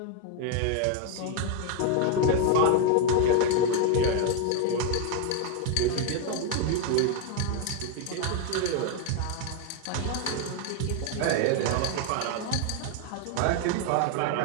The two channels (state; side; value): different; both; correlation 0.01